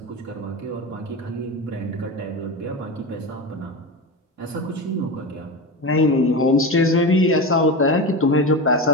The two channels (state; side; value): normal; both; correlation 0.22